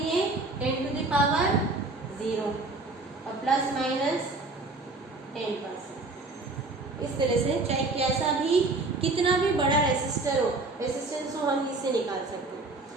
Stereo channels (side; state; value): left; quieter; 3.3 dB